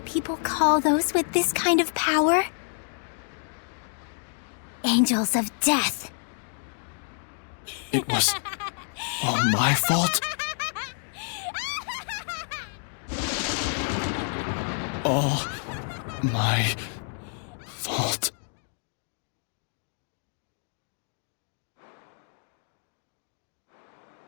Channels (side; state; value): right; silent; 57 dB below the other